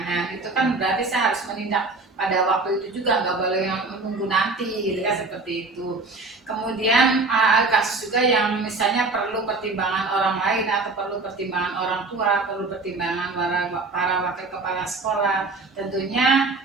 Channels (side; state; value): left; quieter; 3.6 dB